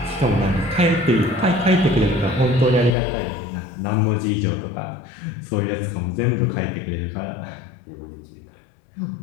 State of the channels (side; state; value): right; drops out; at 3.0 s